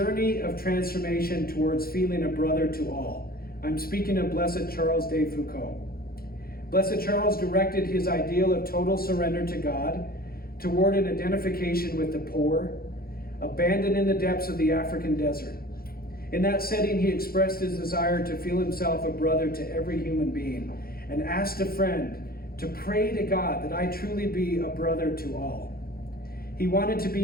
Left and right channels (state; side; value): late; right; 0.44 ms